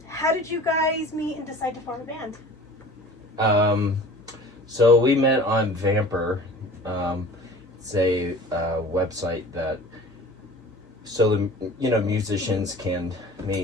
how did you guys meet and decide to form a band? So we met on Vamper. It's a website that musicians can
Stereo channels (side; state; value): both; normal; correlation 0.43